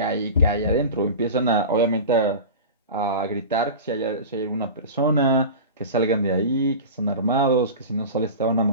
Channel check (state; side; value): inverted; both; correlation -0.30